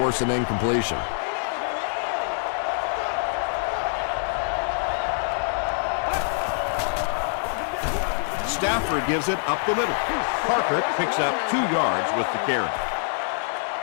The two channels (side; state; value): right; silent; digital silence